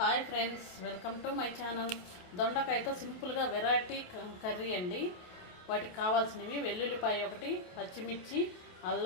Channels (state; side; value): late; right; 28 ms